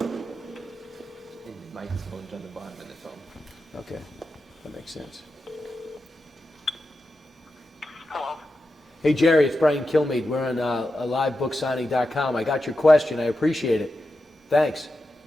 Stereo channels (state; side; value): normal; both; correlation 0.90